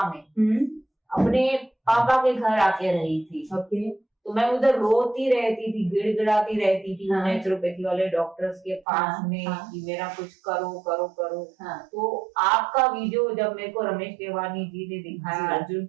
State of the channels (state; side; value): drops out; left; at 8.8 s